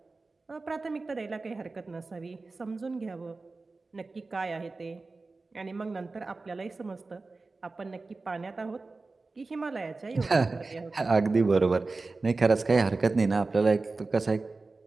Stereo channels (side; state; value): left; quieter; 3.7 dB